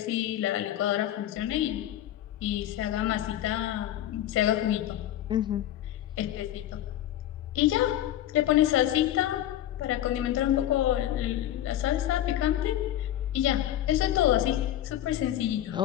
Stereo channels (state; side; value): quieter; right; 12.6 dB